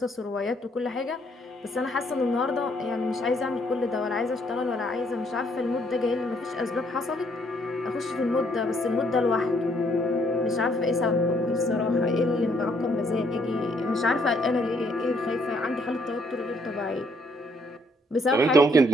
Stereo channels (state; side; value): normal; both; correlation 0.68